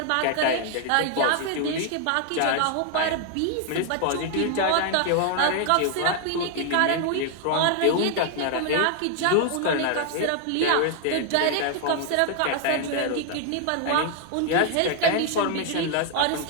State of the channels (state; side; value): different; both; correlation 0.00